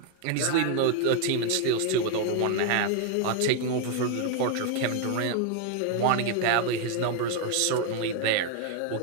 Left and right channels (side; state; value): both; different; correlation 0.00